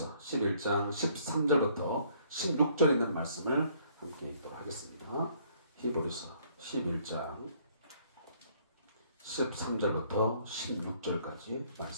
11장 13절부터 16절 있는 말씀을 함께 읽도록 하겠습니다. 히브리서 11장 13절부터 16절까지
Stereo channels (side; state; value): both; inverted; correlation -0.63